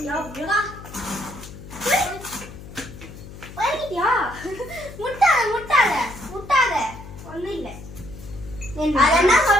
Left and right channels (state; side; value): noise; left; hum, 15 dB below the sound